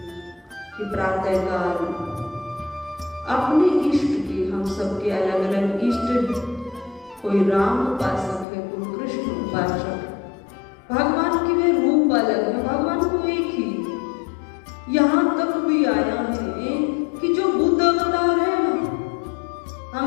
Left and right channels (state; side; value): drops out; right; at 8.5 s